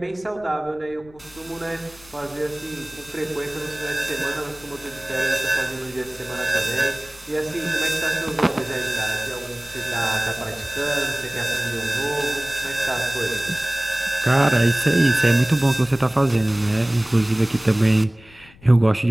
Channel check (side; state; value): left; noise; rumble, 25 dB below the sound